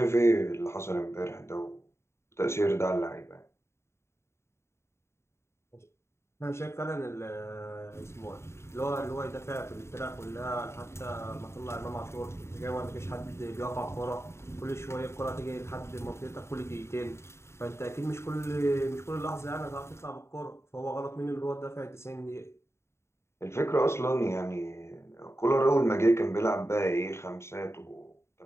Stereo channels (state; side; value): late; right; 0.13 ms